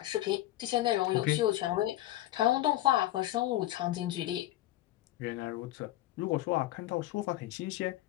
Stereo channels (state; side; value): quieter; right; 15.3 dB